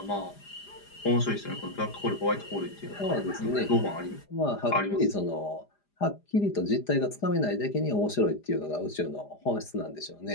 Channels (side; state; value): right; late; 4.9 ms